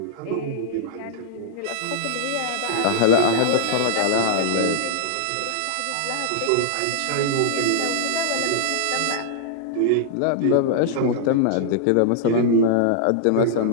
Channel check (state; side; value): different; both; correlation -0.01